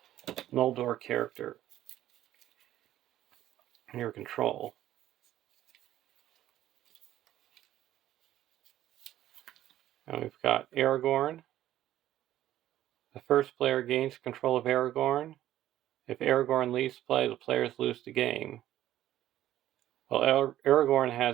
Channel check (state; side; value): quieter; left; 13.1 dB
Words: Noldor character in your control. And we've got Aragorn. The first player gains control of Aragorn. If Aragorn leaves play, the players lose the game. While Aragorn